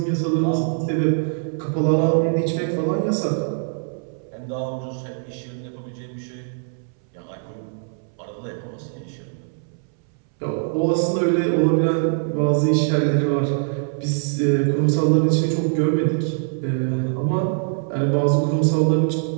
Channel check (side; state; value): left; silent; 64 dB below the other